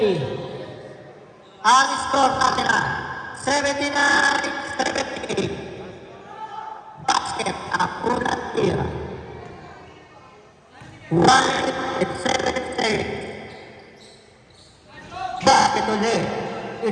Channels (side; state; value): both; identical; correlation 1.00